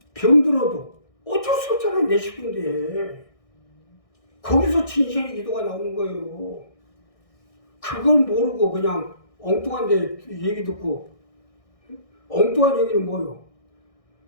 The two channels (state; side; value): late; right; 1.6 ms